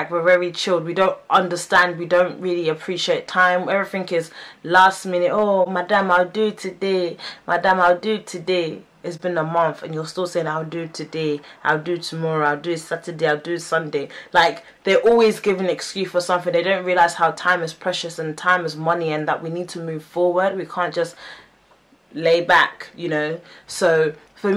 we're very chilled, we don't understand, we don't really appreciate time. Everything is last minute. Oh, madam, I'll do it today, madam, I'll do it today. It's been a month and you're still saying I'll do it today, I'll do it tomorrow, I'll do it Saturday, I'll do it Sunday. Like, they're always giving an excuse for something. They don't realize how time is precious and time is money, and that we need to move forward. We can't just lay back, you know. So for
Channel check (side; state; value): both; identical; correlation 1.00